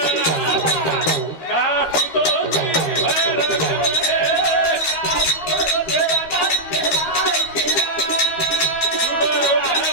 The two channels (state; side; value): late; right; 13 ms